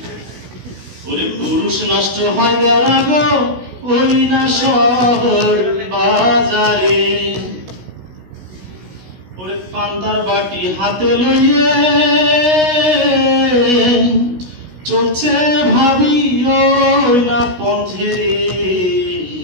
ওরে পুরুষ নষ্ট হয় দেওরা গো ওই না শহর বাজারে। ওরে পান্তার বাটি হাতে লইয়ে চলছে ভাবি ওই না পথে রে।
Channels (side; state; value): left; late; 16 ms